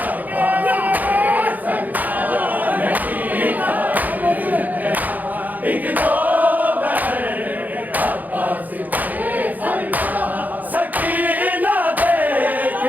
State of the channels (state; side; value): late; left; 0.082 ms